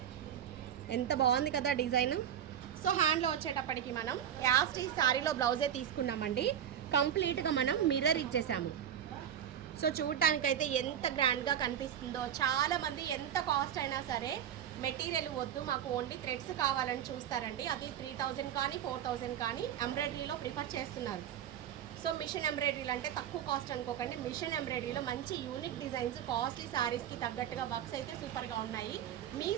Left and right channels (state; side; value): quieter; left; 9.8 dB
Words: ఎంత బాగుంది కదా డిజైన్. సో హ్యాండ్లో వచ్చేటప్పటికి మనం యాస్ట్ ఈ శారీలో బ్లౌజే తీసుకున్నామండి. కంప్లీట్గా మనం మిర్రర్ ఇచ్చేసాము. సో చూడటానికైతే ఎంత గ్రాండ్గా కనిపిస్తుందో. చాలామంది ఎంత కాస్ట్ అయినా సరే మెటీరియల్ వద్దు, మాకు ఓన్లీ థ్రెడ్స్ కావాలని చూస్తారండి. అది 3000 కానీ 4000 కానీ ఎంబ్రాయిడరీలో ప్రిఫర్ చేస్తున్నారు. సో మిషన్ ఎంబ్రాయిడరీలు అంటే తక్కువ కాస్ట్ అనుకోకండి. మిషన్ ఎంబ్రాయిడరీలో మంచి యూనిక్ డిజైన్స్, కాస్ట్లీ శారీస్కి తగ్గట్టుగా వర్క్స్ అయితే సూపర్గా ఉన్నాయి. మీ